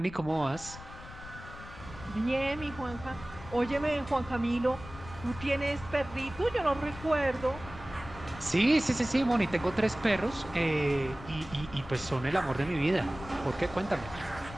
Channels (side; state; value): left; noise; rumble, 15 dB below the sound